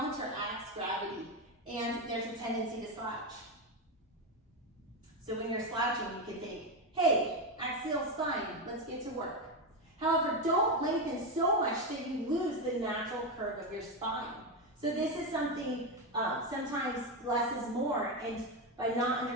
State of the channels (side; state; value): both; normal; correlation 0.10